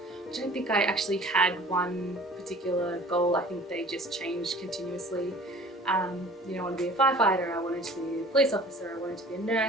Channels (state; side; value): normal; both; correlation 0.47